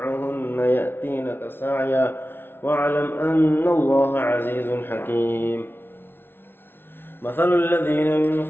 يأتينك سعيا واعلم أن الله عزيز حكيم مثل الذين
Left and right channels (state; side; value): late; right; 0.11 ms